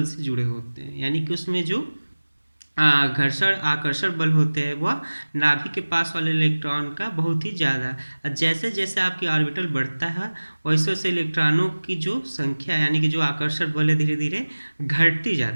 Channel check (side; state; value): both; inverted; correlation -1.00